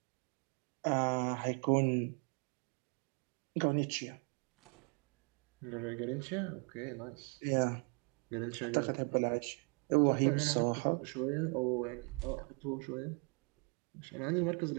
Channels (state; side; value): quieter; left; 36.7 dB